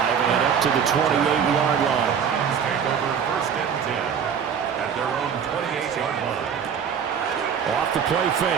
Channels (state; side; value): quieter; left; 7.4 dB